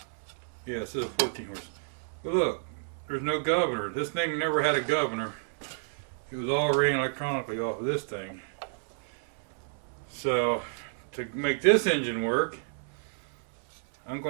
Yeah, this is a 14 horse. But look, there's no governor. This thing never had a governor. It was all ran electronically off of this thing. So to make this engine work, I'm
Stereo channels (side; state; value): left; silent; 58 dB below the other